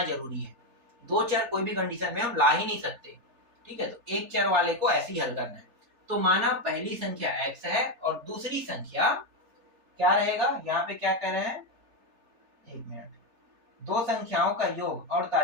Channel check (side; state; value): left; late; 3.4 ms